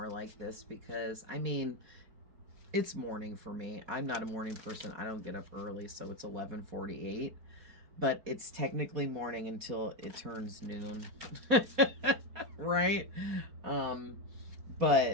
like this, because, I mean, it's morning for me. I'm not a morning person. I don't get up early, so it's 11:48. But it's technically morning until it turns noon. Right?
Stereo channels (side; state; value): left; late; 4.2 ms